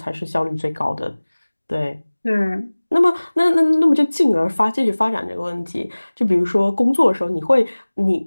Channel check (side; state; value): both; inverted; correlation -1.00